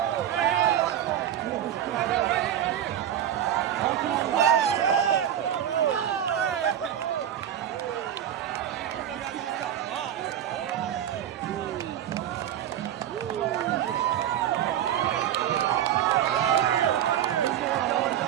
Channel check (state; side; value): quieter; left; 10.7 dB